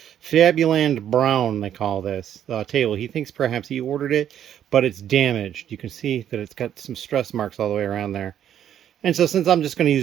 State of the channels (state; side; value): quieter; left; 10.2 dB